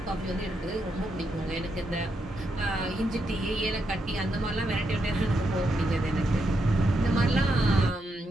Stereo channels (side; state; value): both; normal; correlation 0.81